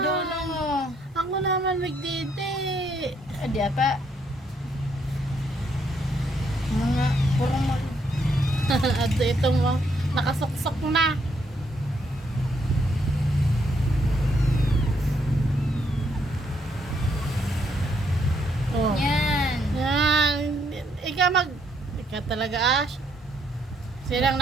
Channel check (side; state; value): both; normal; correlation 0.73